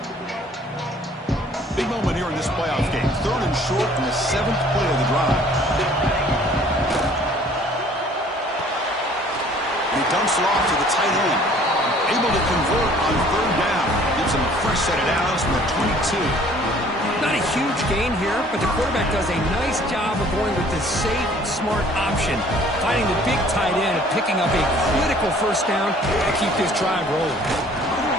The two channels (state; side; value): normal; both; correlation 0.55